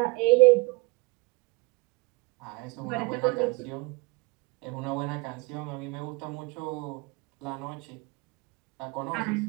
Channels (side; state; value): left; quieter; 25.7 dB